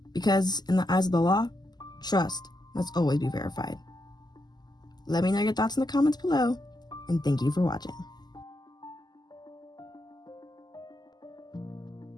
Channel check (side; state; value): right; late; 0.20 ms